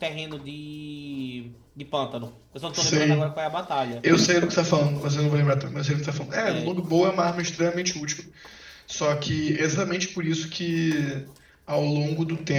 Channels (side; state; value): both; identical; correlation 1.00